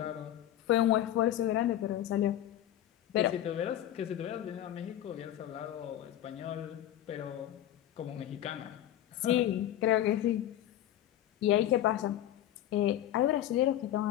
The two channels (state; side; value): quieter; right; 12.4 dB